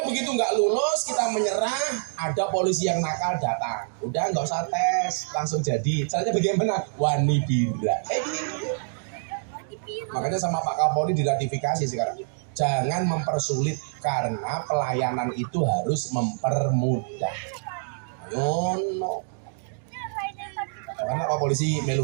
begitu nggak lulus, kita menyerah, ada polisi yang nakal datang. Udah nggak usah tes, langsung jadi. Caranya bagaimana? Wani bira. Makanya sama Pak Kapolri diratifikasi sekarang. Jangan mempersulit, karena pelayanan itu harus mempermudah. Ayo, no. Karena Pak Polisi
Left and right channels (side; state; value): left; silent; digital silence